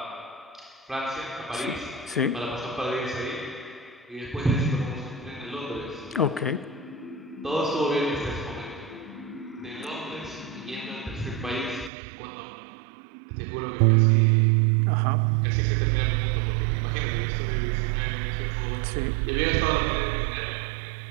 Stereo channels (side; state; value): left; drops out; at 11.9 s